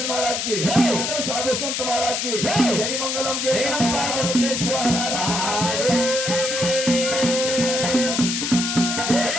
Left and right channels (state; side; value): noise; left; hiss, 1 dB below the sound